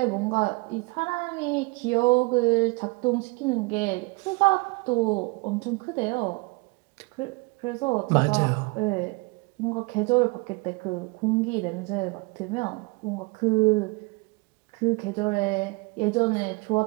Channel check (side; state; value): left; quieter; 27.5 dB